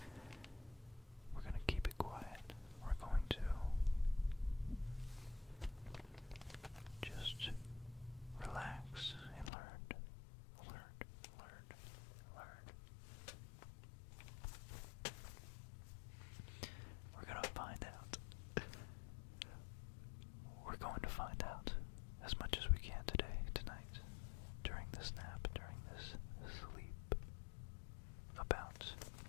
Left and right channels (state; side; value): drops out; right; at 9.5 s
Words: we're going to keep it quiet. We're going to just relax and learn. We're going to find out. We're going to find out as much as we can tonight, during this nap, during this sleep, about